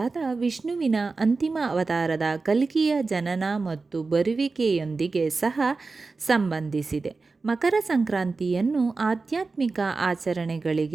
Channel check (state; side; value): quieter; left; 4.0 dB